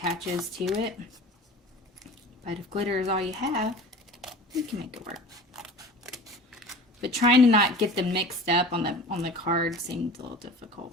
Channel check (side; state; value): both; normal; correlation 0.39